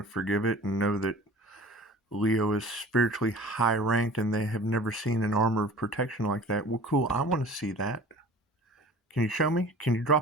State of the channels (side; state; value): both; normal; correlation 0.43